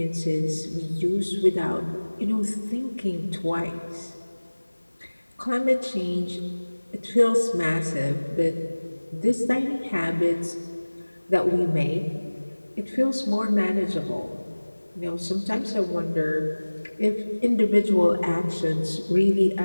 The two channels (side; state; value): both; inverted; correlation -1.00